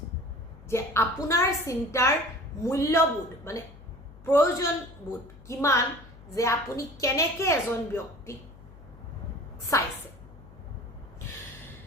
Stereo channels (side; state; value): left; noise; hum, 20 dB below the sound